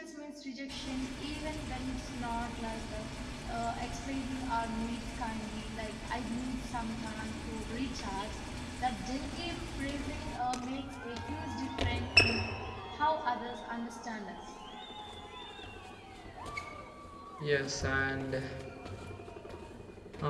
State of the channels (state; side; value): identical; both; correlation 1.00